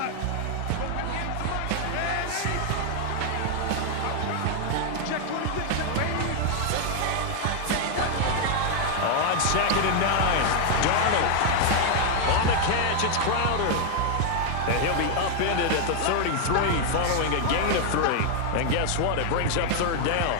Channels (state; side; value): different; both; correlation 0.00